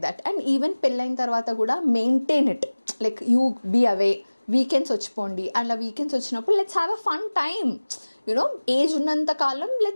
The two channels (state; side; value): inverted; both; correlation -1.00